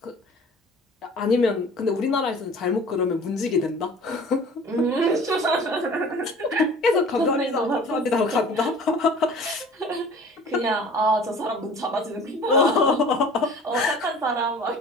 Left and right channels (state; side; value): normal; both; correlation 0.45